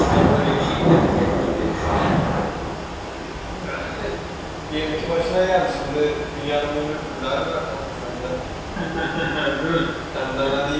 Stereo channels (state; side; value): identical; both; correlation 1.00